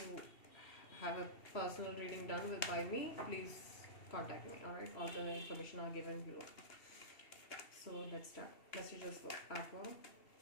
have a personal reading done with by me, please contact me. All right, all the information are given below. So let's start. Messages for Aqua.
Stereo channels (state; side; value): late; right; 2.7 ms